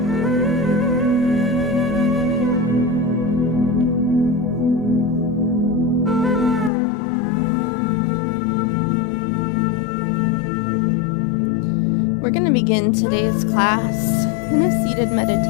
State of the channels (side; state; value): right; drops out; at 6.7 s